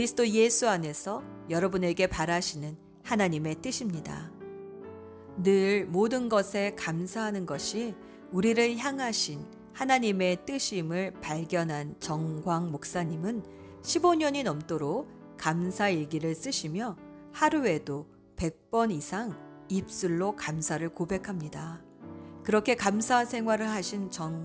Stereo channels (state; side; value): identical; both; correlation 1.00